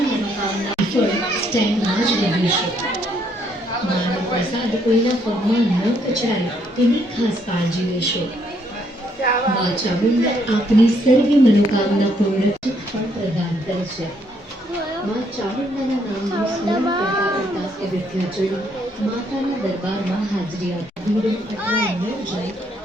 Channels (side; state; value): both; normal; correlation 0.71